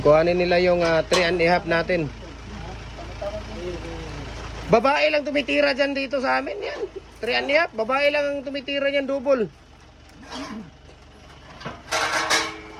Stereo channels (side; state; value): both; identical; correlation 1.00